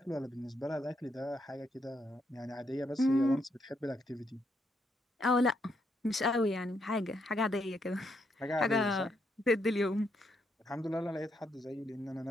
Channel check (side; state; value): both; normal; correlation 0.77